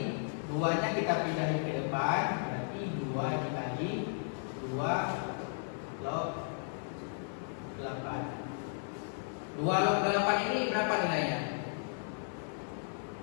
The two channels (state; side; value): silent; right; 55 dB below the other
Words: 2-nya kita pindahin ke depan, berarti 2 dikali 2 log 8. 2 log 8 ini berapa nilainya?